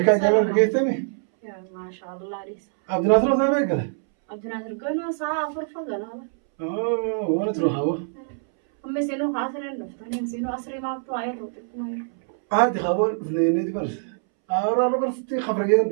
كان جامع بقيتني. ما شاء الله ليس. عبد الناصر زمان قال. عبد الناصر قلنا ساعة فرفة قلنا. وين تروح هو؟ هم سينو خاسرين دفتني سينو أسري ما بتوعي روتنا. عادي خبر اثنين برس. أنا برس تي خبرية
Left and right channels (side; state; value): left; silent; 62 dB below the other